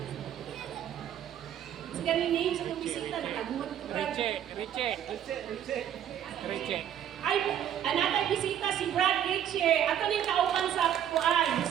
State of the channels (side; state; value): left; quieter; 10.1 dB